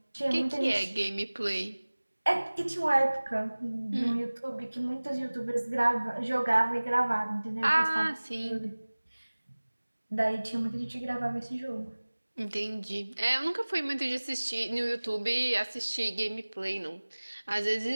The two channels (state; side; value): inverted; both; correlation -1.00